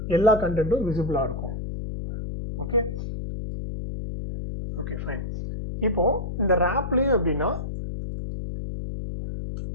எல்லா கண்டென்ட்டும் விசிபிளாக இருக்கும். Okay okay fine. இப்போ இந்த ரேப்லேயே அப்படின்னா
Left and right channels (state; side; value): noise; left; hum, 6 dB below the sound